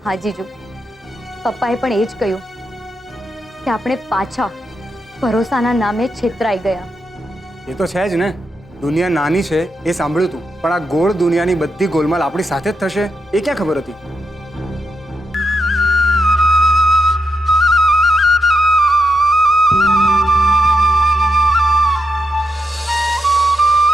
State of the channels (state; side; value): normal; both; correlation 0.84